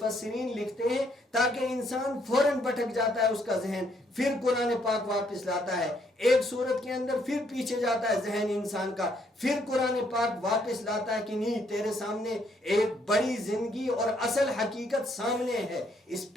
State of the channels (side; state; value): both; normal; correlation 0.70